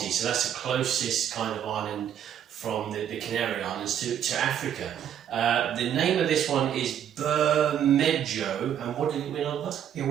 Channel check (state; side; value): quieter; left; 9.6 dB